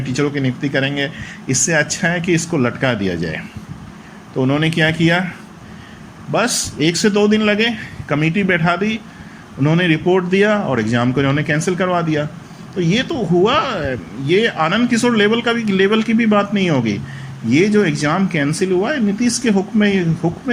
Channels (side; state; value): both; identical; correlation 1.00